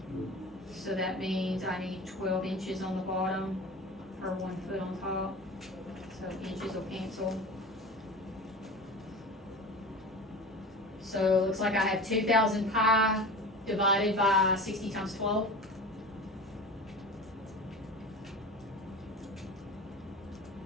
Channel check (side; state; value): both; normal; correlation 0.34